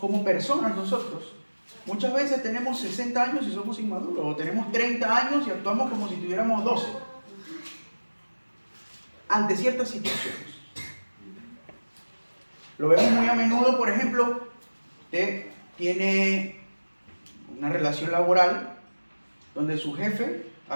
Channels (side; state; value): both; inverted; correlation -1.00